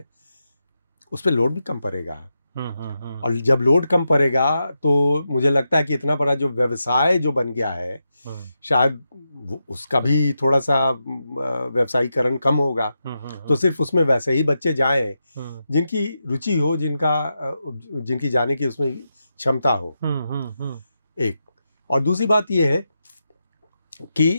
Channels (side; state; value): both; inverted; correlation -0.88